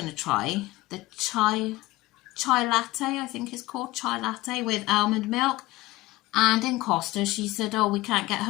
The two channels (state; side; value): quieter; right; 19.1 dB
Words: to try the chai latte, I think it's called, chai latte with almond milk. And in Costa, she said, oh, we can't get